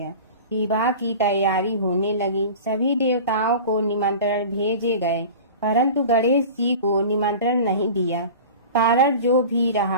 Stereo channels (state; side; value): inverted; both; correlation -0.36